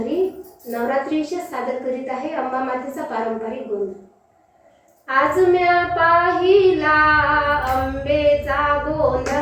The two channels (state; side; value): identical; both; correlation 1.00